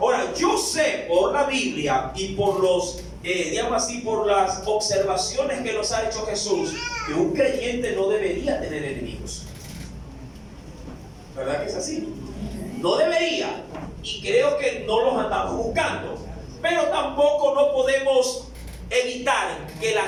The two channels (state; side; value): identical; both; correlation 1.00